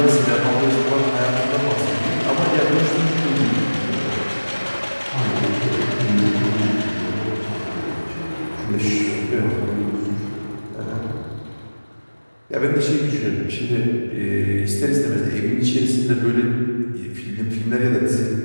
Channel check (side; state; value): both; inverted; correlation -1.00